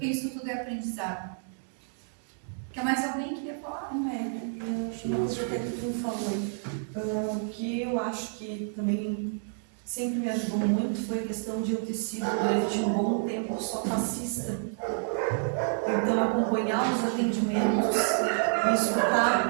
isso tudo é aprendizado. Quer mais alguém que queria falar? Eu acho uma coisa que tu falou. O que eu acho que também sempre me ajudou muito foi a questão de eu ter sido durante um bom tempo só passista. Então, acompanhar os atendimentos e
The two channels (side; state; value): left; silent; digital silence